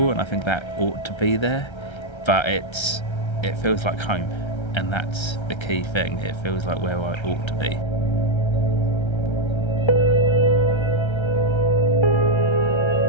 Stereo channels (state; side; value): late; right; 1.3 ms